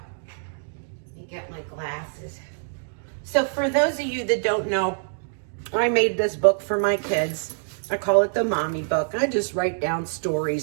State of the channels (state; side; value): silent; left; digital silence